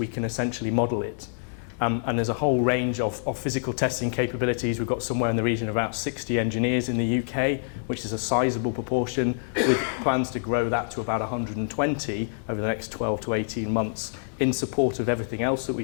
can essentially model it. And there's a whole range of physical testing capabilities. We've got somewhere in the region of about 60 engineers in the UK, which is a sizable proportion, with plans to grow that to about 120 over the next 12 to 18 months in support of everything else that we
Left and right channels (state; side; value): silent; right; digital silence